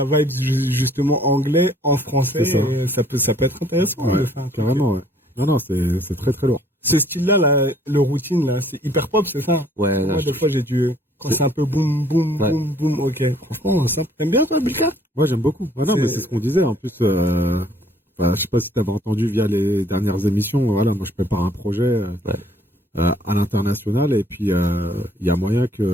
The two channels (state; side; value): normal; both; correlation 0.59